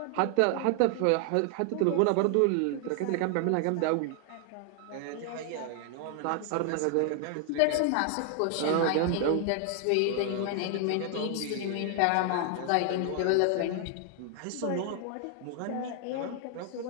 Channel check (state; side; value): different; both; correlation 0.00